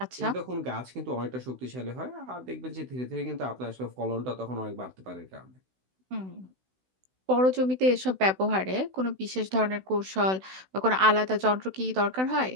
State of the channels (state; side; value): late; left; 16 ms